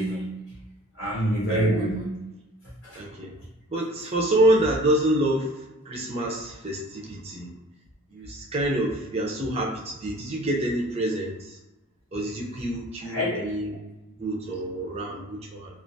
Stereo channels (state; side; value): normal; both; correlation 0.48